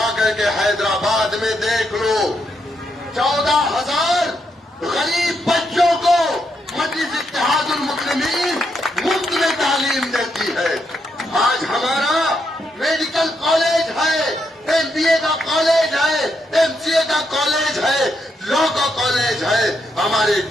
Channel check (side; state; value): both; normal; correlation 0.80